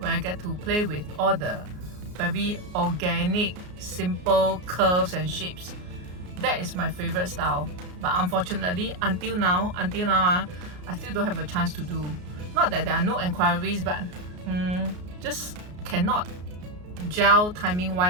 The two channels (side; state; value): left; late; 33 ms